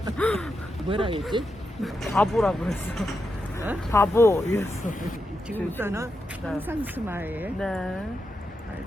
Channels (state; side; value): normal; both; correlation 0.86